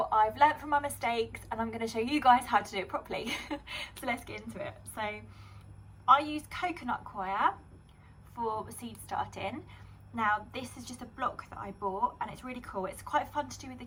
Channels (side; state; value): both; identical; correlation 1.00